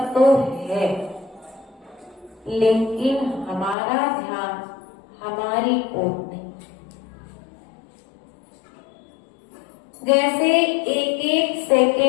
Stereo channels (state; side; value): drops out; right; at 3.8 s